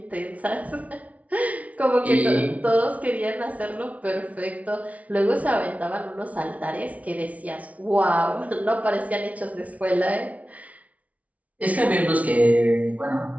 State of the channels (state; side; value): late; left; 0.068 ms